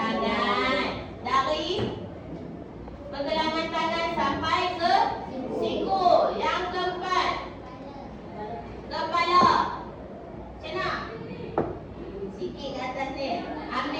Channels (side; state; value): both; identical; correlation 1.00